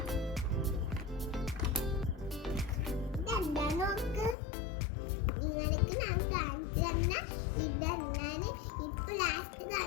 ഇതെന്താ നോക്ക്, നിങ്ങൾക്ക് ഞാൻ കാണിച്ചു തന്ന ഇതെന്നാണ് ഇപ്പൊ ലാസ്റ്റ്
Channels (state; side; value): drops out; right; at 4.4 s